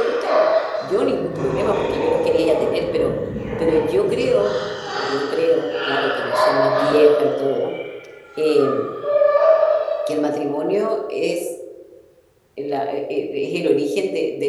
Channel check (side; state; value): both; identical; correlation 1.00